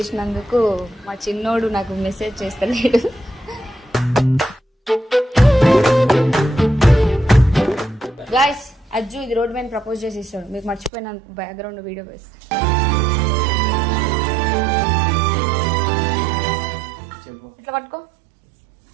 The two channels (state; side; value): drops out; left; at 10.9 s